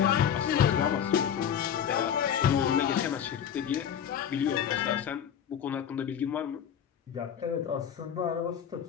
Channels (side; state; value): right; quieter; 8.8 dB